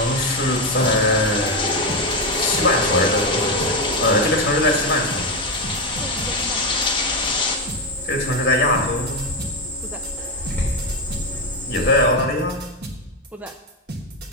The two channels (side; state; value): both; normal; correlation 0.10